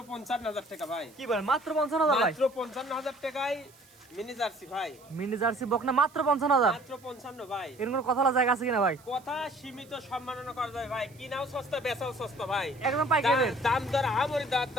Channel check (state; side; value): noise; right; hiss, 27 dB below the sound